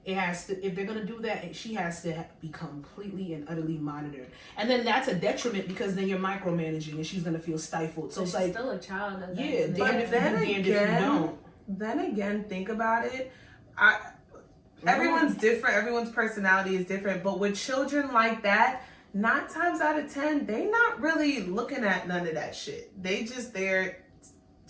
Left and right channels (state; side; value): identical; both; correlation 1.00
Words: it has to. If they're going to do that, she has to be completely and utterly monitored, and then that's a detriment because then you're micromanaging, and she's going to feel stifled. So But it's she's like, still a child. At that yeah, age. damn if you do, damned if you don't. then again, think about it. Everyone's different. Everyone's personality is different. But with children like that, 9 times out of 10, they not really looking at none of that shit. They just there